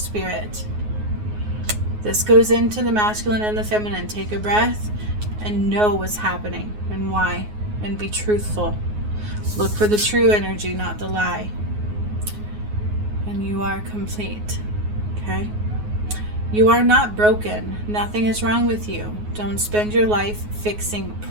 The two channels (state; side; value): late; left; 9.5 ms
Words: This goes into the masculine and the feminine. Take a breath and know what's happening and why, and be truthful. Look for the true energy, not the lie. And you are complete. Okay? You are not broken. Nothing is wrong with you. Don't spend your life fixing